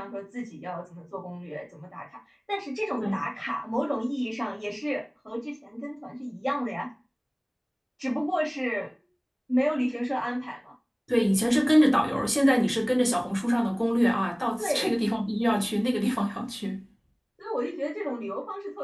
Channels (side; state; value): both; identical; correlation 1.00